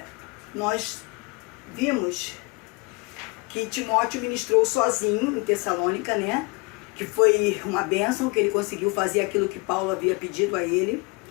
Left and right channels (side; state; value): right; quieter; 28.3 dB